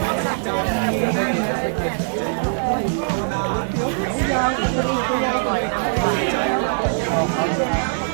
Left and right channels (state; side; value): silent; left; digital silence